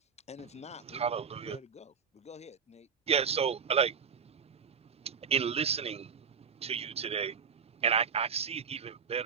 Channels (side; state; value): left; quieter; 6.4 dB